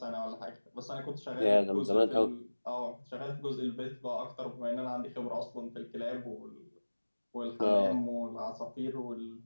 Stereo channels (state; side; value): inverted; both; correlation -1.00